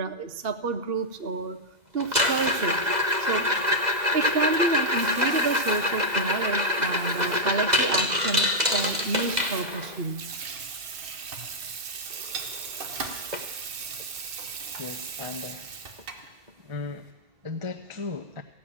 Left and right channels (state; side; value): late; left; 2.0 ms